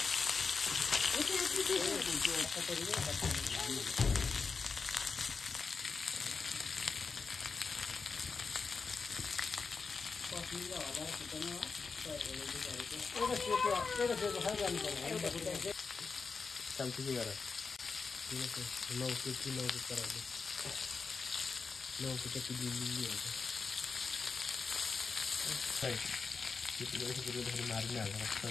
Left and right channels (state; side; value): quieter; right; 4.9 dB